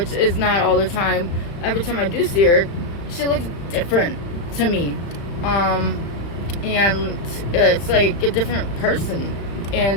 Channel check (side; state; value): right; late; 35 ms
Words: is not all the time, every time I do see her, she looks different to me. And it's like a different person.